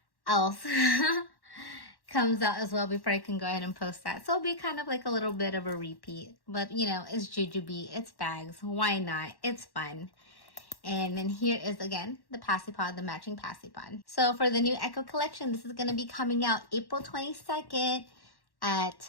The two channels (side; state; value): right; late; 1.1 ms